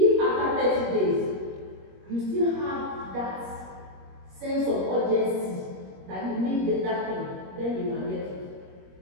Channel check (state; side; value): late; left; 21 ms